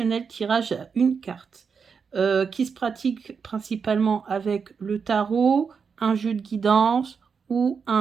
tirage à une carte, qui se pratique principalement avec le tarot, un jeu de guidance ou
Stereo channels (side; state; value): left; quieter; 5.9 dB